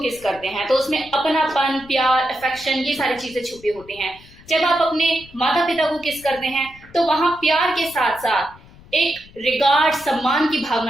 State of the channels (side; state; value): left; noise; rumble, 23 dB below the sound